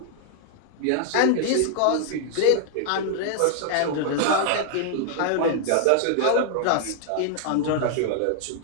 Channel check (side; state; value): both; different; correlation -0.01